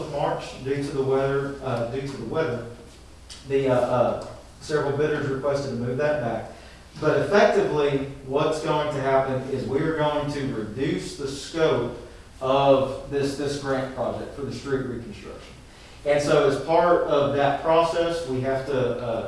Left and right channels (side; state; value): both; identical; correlation 1.00